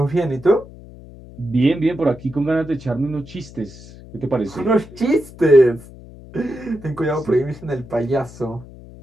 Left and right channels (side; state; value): left; noise; hum, 18 dB below the sound